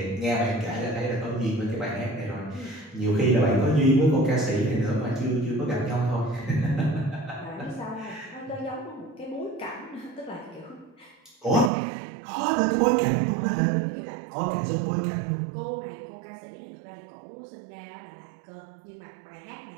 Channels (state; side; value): drops out; left; at 11.7 s